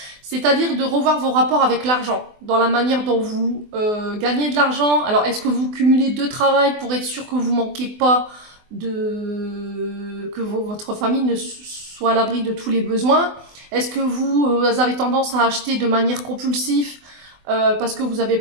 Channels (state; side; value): late; left; 24 ms